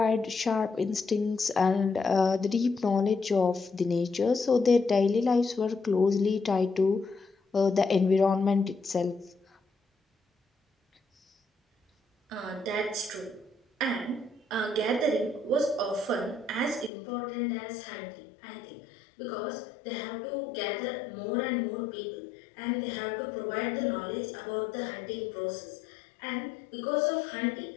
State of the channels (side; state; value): right; drops out; at 16.9 s